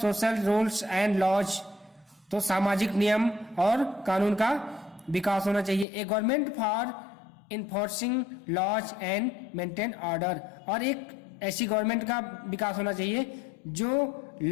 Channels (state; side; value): drops out; right; at 5.9 s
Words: social rules and laws, तो सामाजिक नियम और कानून का विकास होना चाहिए। A government for enforcing laws and maintain order, और एक ऐसी गवर्नमेंट का विकास होना चाहिए जो